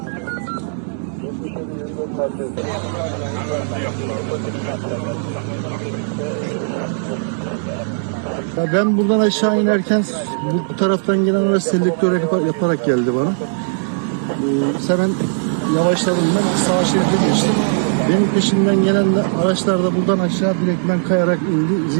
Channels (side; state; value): left; silent; digital silence